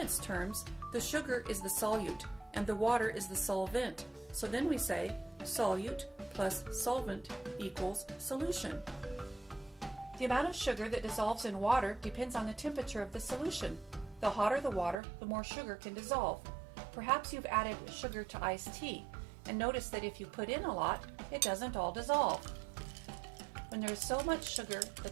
terms, the sugar is the solute and the water is the solvent. So then we say solute plus solvent equals solution. The amount of sugar that dissolves in water depends on the temperature of the solution. The hotter the water, the more sugar can dissolve. Perhaps you've added sugar to iced tea and noticed that if you put in a lot, it doesn't all dissolve. When there is so much sugar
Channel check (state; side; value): drops out; left; at 15.0 s